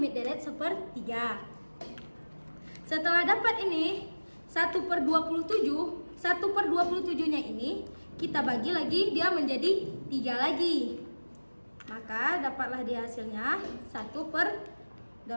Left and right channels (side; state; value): both; inverted; correlation -1.00